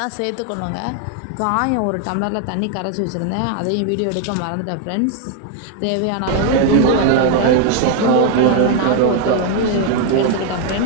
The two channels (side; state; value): both; different; correlation 0.01